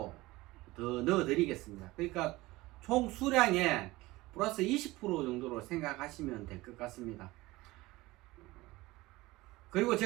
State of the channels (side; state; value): left; quieter; 19.8 dB